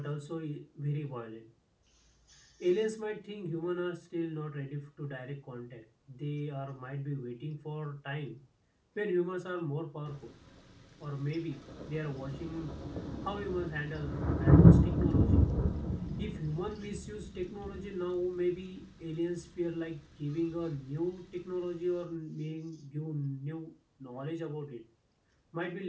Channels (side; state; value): both; identical; correlation 1.00